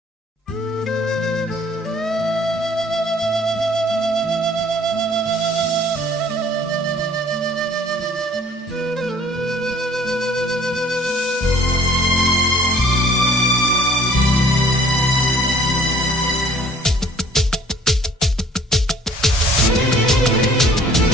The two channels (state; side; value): normal; both; correlation 0.55